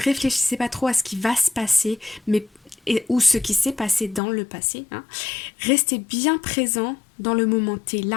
pas trop à ce qui va se passer, ou ce qui s'est passé dans le passé. Hein. Restez bien présent dans le moment T,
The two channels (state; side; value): drops out; right; at 4.2 s